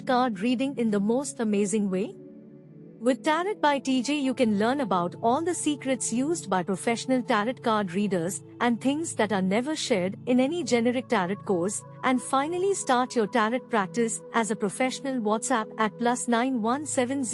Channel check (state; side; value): identical; both; correlation 1.00